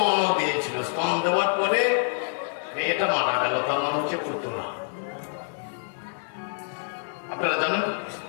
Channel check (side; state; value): right; silent; digital silence